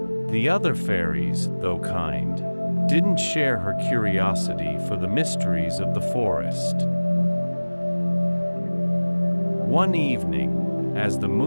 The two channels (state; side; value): inverted; both; correlation -1.00